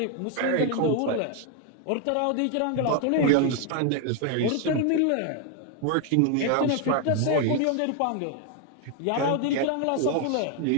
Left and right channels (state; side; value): different; both; correlation 0.01